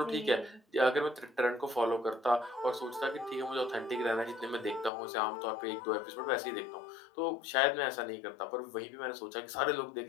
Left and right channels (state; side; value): drops out; right; at 4.9 s